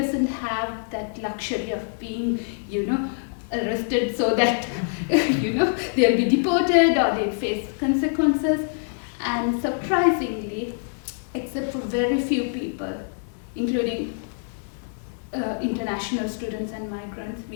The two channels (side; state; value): right; silent; digital silence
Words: have that luxury of being, arrested so that, they'll be deported or they'll face consequences. And surprisingly, except for very few people, including international students and migrants,